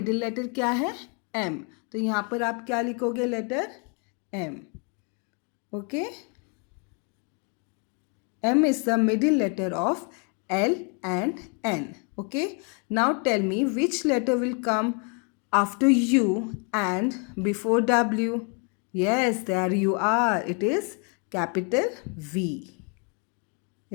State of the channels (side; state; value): right; quieter; 36.9 dB